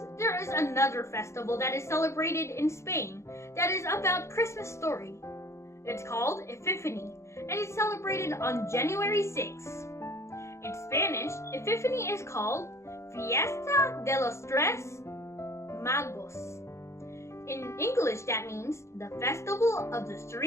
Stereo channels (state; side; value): late; right; 0.14 ms